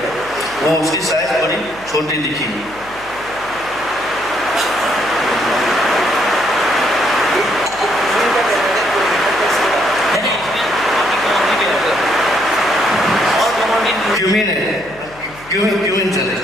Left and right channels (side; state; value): left; noise; hum, 22 dB below the sound